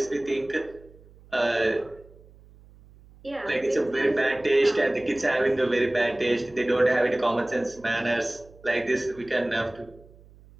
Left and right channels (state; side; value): noise; right; hum, 24 dB below the sound